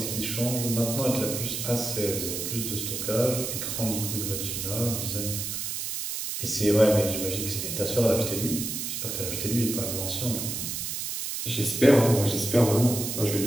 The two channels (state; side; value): noise; right; hiss, 4 dB below the sound